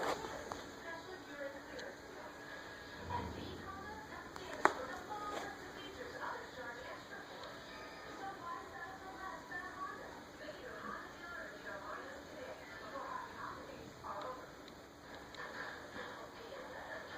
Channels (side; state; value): both; identical; correlation 1.00